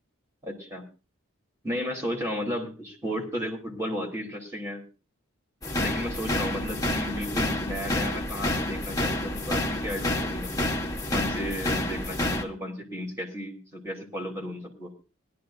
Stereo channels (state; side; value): normal; both; correlation 0.53